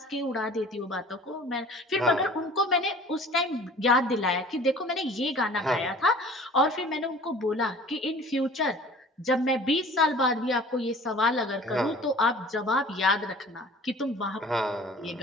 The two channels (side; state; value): both; normal; correlation 0.46